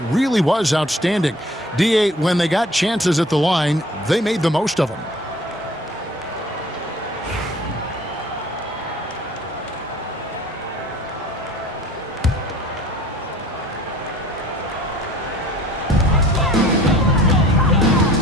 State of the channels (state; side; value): normal; both; correlation 0.50